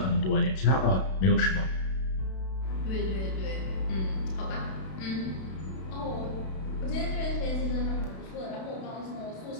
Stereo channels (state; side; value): late; right; 32 ms